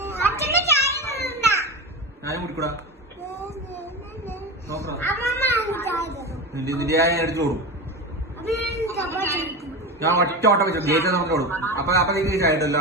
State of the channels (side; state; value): both; normal; correlation 0.23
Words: ഞാനും കുടിക്കൂടാ നോക്കാം. നിന്റെ ഞാൻ എടുത്തു കൊടുക്കും. ഞാൻ ഒറ്റ ഓട്ടം വെച്ചു ഗേറ്റ് നമുക്ക് കൊടുക്കും. അപ്പൊ നീ ചായട്ടല്ലോ.